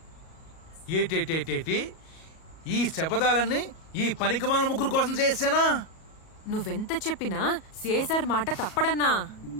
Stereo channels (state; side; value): late; right; 37 ms